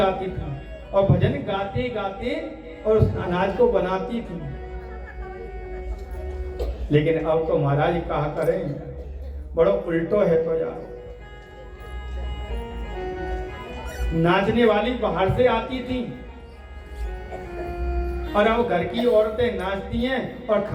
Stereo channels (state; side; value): identical; both; correlation 1.00